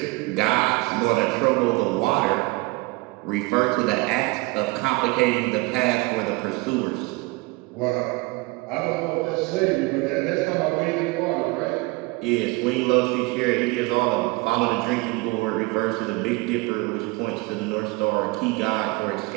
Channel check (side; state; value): left; quieter; 24.6 dB